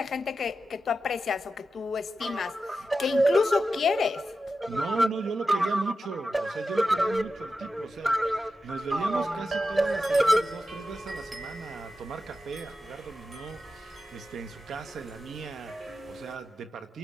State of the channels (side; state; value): both; normal; correlation 0.91